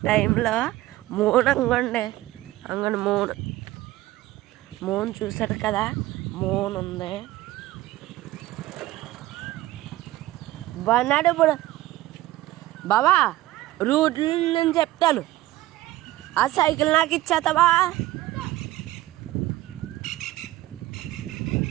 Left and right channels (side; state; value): left; quieter; 16.4 dB